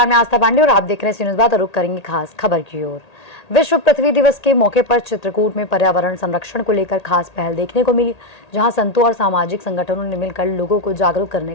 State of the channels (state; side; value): late; right; 1.8 ms